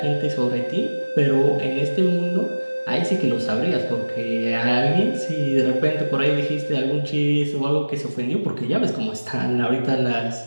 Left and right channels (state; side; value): inverted; both; correlation -1.00